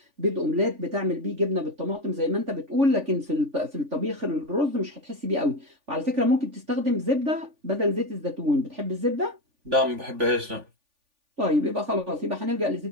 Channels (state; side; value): late; left; 3.5 ms